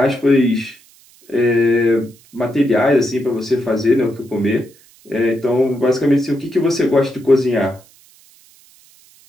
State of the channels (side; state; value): right; noise; hiss, 28 dB below the sound